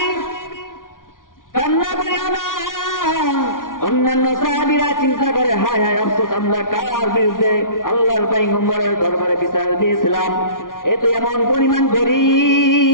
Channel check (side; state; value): right; late; 0.89 ms